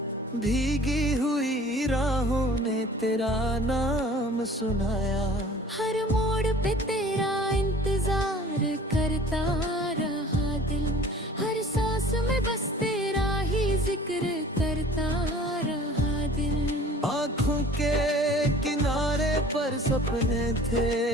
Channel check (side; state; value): both; normal; correlation 0.48